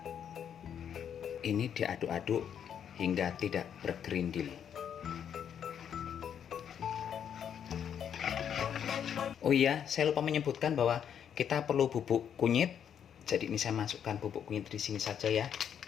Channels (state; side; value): quieter; right; 8.6 dB